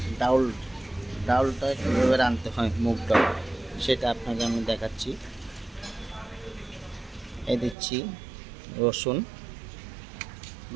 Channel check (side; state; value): left; drops out; at 7.8 s